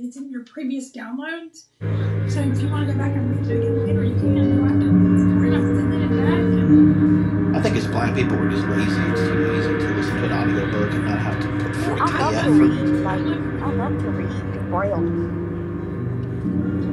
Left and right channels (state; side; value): identical; both; correlation 1.00